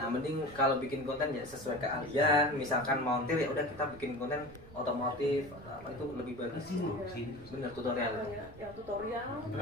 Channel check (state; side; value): noise; right; rumble, 19 dB below the sound